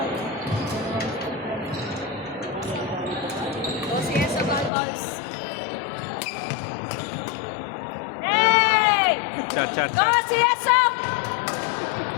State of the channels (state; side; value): drops out; right; at 4.7 s